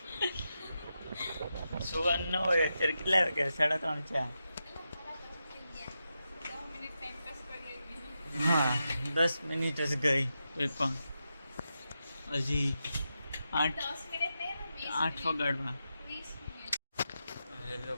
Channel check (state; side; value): inverted; both; correlation -0.88